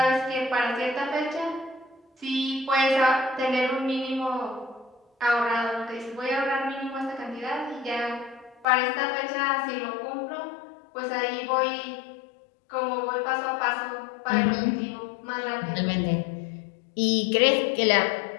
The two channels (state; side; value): drops out; right; at 8.7 s